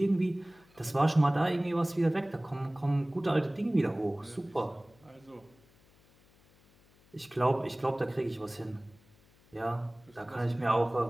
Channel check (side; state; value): left; noise; hum, 30 dB below the sound